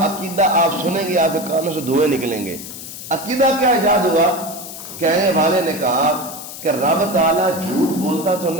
عقیدہ آپ سنیں گے آپ کے کانوں سے دھوئیں نکلیں گے۔ عقیدہ کیا ایجاد ہوا؟ کہنے والے نے کہا کہ رب تعالیٰ جھوٹ بولتا تو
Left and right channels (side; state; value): left; noise; hiss, 11 dB below the sound